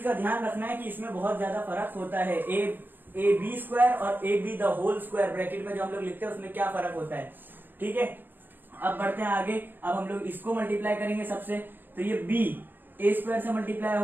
का ध्यान रखना है कि इसमें बहुत ज्यादा फर्क होता है। ए बी स्क्वायर और A B the whole square bracket में जो हम लोग लिखते हैं उसमें क्या फर्क होता है। ठीक है, अब बढ़ते हैं आगे। अब हम लोग इसको मल्टीप्लाई करेंगे सबसे, तो ये b ए स्क्वायर से मल्टीप्लाई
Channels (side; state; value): left; late; 0.093 ms